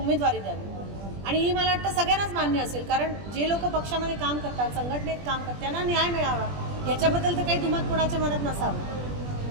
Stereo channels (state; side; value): late; left; 20 ms